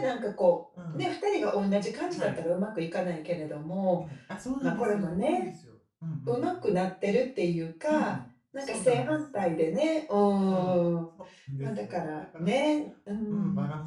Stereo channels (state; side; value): identical; both; correlation 1.00